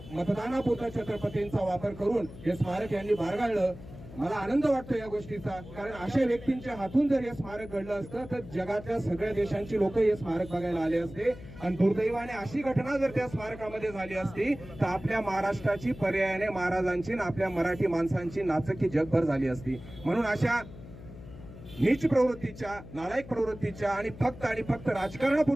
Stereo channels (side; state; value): left; noise; hum, 15 dB below the sound